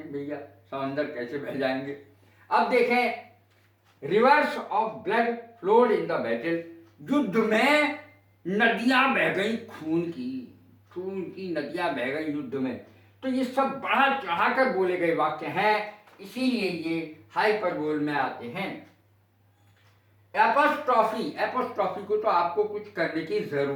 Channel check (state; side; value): identical; both; correlation 1.00